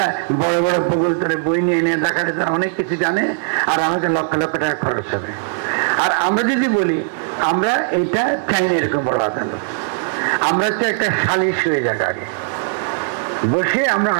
বড় বড় প্রকল্প বই নিয়ে এনে দেখাতে তারা অনেক কিছু জানে, আর আমাকে লক্ষ লক্ষ টাকা খরচ হবে। আর আমরা যদি বলি আমরা এটা চাই না এরকম বড় আদালত, আমরা তো একটা সালিশ হয়ে যাক, আগে বসে আমরা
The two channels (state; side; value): silent; left; digital silence